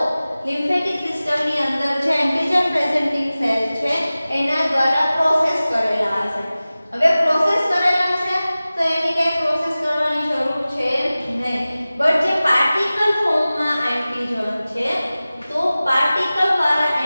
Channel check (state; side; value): inverted; both; correlation -0.97